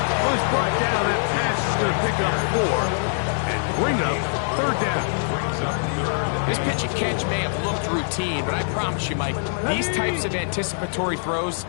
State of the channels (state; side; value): silent; right; 63 dB below the other